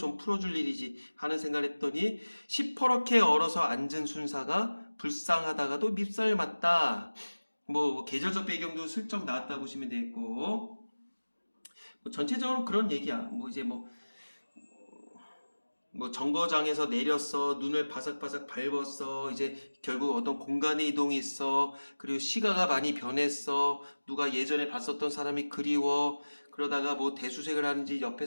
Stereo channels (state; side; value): inverted; both; correlation -1.00